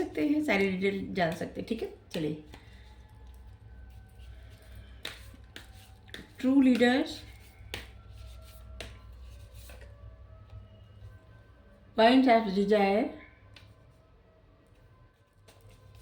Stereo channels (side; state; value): both; identical; correlation 1.00